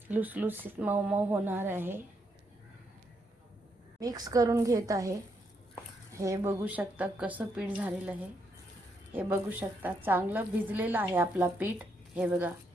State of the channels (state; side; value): normal; both; correlation 0.77